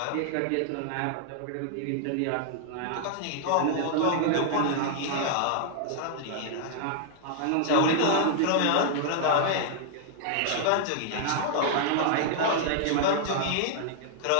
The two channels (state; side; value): different; both; correlation -0.01